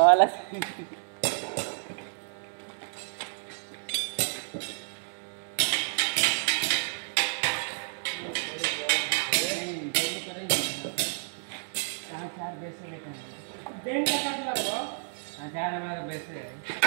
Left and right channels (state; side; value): silent; left; 58 dB below the other